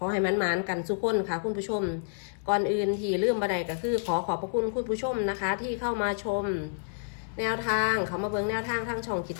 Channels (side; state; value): right; silent; 59 dB below the other